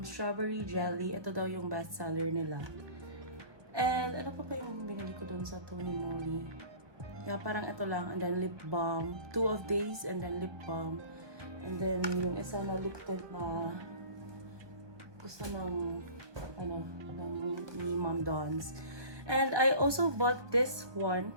Strawberry jelly. Ito daw yung best seller nila. And ano pa yung binili ko doon sa Tony Moly? Yeah, parang ito lang. And then lip balm. 2 of these and then lip balm. And then yung isa na lip tint na gusto ng ni Mom Don's. And I also bought this one.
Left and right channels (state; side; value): late; left; 1.2 ms